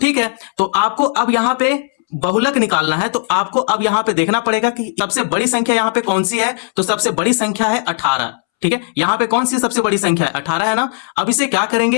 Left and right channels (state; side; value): silent; right; 68 dB below the other